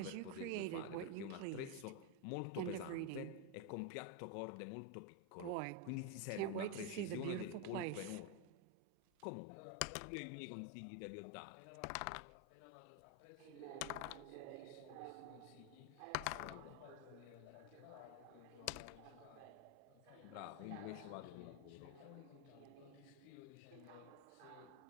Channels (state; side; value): different; both; correlation 0.02